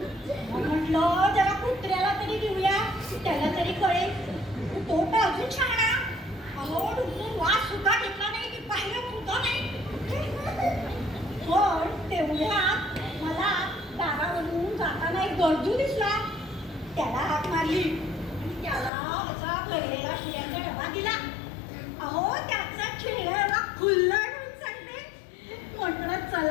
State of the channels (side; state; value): right; drops out; at 18.9 s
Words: म्हटलं जरा कुत्र्याला तरी देऊया, त्याला तरी कळेल. तो तर अजून छान. अहो डुंबून वास सुद्धा घेतला नाही की पाहिलं सुद्धा नाही. पण तेवढ्यात मला दारावरून जाताना एक गरजू दिसला. त्याला हाक मारली आणि त्याला असा भरलेला शिऱ्याचा डबा दिला. अहो त्याचा चेहरा खुललाय म्हणून सांगते. म्हटलं